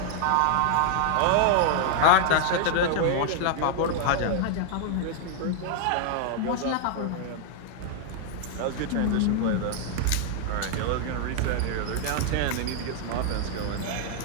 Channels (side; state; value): both; different; correlation 0.00